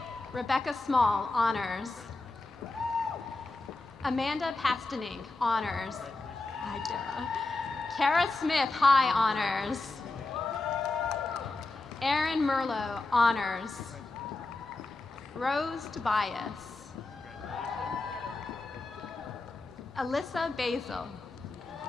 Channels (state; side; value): quieter; right; 3.3 dB